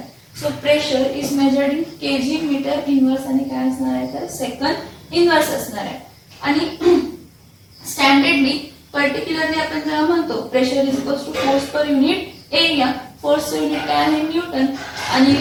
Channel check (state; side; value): identical; both; correlation 1.00